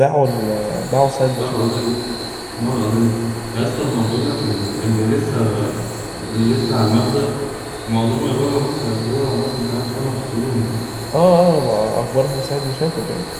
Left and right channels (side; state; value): both; identical; correlation 1.00